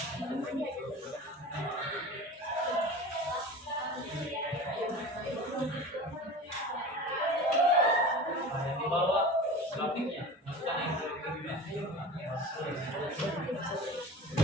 topiknya. Masukkan yang topiknya.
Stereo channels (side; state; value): both; normal; correlation 0.35